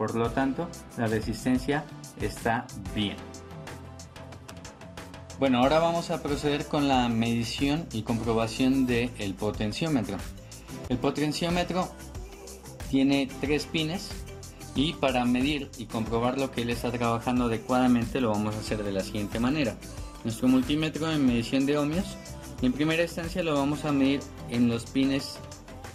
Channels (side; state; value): both; identical; correlation 1.00